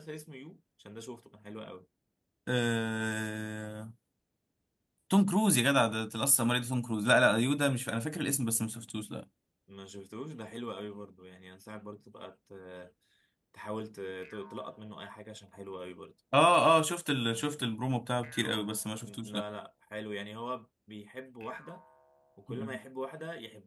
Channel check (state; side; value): identical; both; correlation 1.00